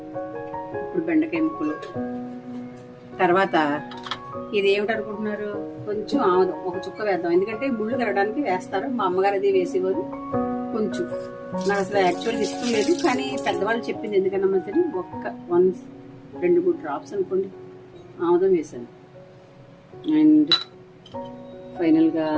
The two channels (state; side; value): identical; both; correlation 1.00